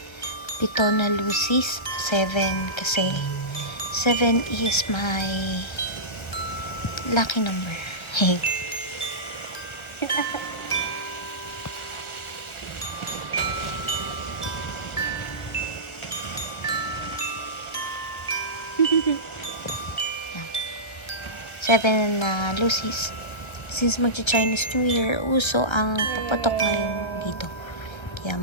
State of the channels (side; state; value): right; late; 1.3 ms